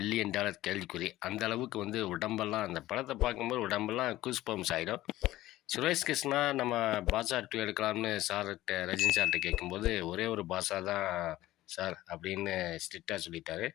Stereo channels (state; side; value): quieter; right; 16.0 dB